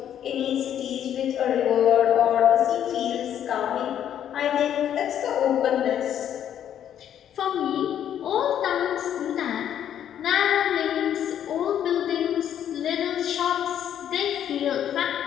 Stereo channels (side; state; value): right; quieter; 10.0 dB